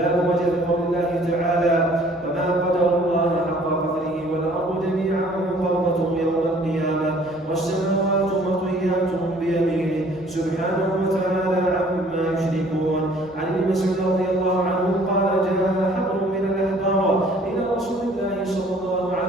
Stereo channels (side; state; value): both; normal; correlation 0.56